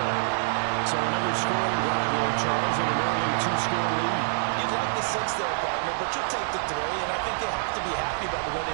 So another scoring drive there, Charles, and an early 2-score lead. You'd like the 6 there, partner, but you'll take the 3, and I think they have to be happy by the way they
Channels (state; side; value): silent; left; 56 dB below the other